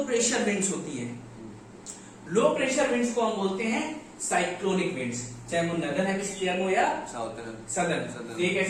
प्रेशर विंड्स होती है, लो प्रेशर विंड्स को हम बोलते हैं साइक्लोनिक विंड्स, चाहे वो नदर्न हेमिस्फीयर में हो या साउथर्न सदर्न। ये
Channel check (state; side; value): identical; both; correlation 1.00